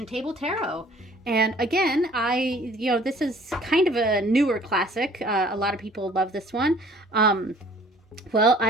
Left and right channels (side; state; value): both; normal; correlation 0.54